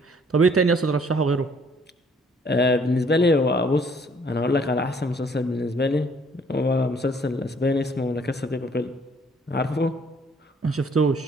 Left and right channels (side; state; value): both; normal; correlation 0.61